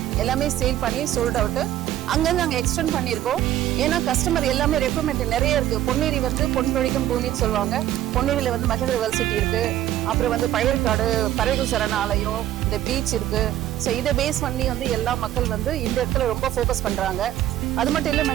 எல்லாமே சேல் பண்ணி சோல்ட் அவுட்டு. அங்கேருந்து நாங்கள் எக்ஸ்டெண்ட் பண்ணியிருக்கோம். ஏன்னா கஸ்டமர் எல்லாமே ரெக்குவயர்மெண்ட் நிறைய இருக்குது. பொன்னேரி வந்து பொன் பொழிக்கும் பூமின்னு சொல்லுவாங்க. பொன்னேரியில் வந்து மகேந்திர வேர்சிட்டி இருக்குது. அப்புறம் வந்து பழையற்காடு பறவைகள் சரணாலயம், இந்த பீச் இருக்குது. ஸோ இதை பேஸ் பண்ணி வந்து எல்லா மக்கள் வந்து இந்த இடத்துல ரொம்ப ஃபோக்கஸ் பண்ணுறாங்க. அது மட்டும் இல்லை,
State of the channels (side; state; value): left; quieter; 12.9 dB